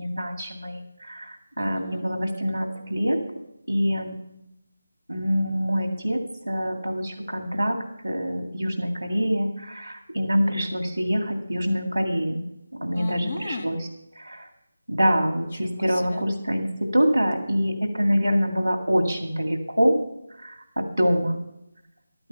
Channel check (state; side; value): inverted; both; correlation -0.97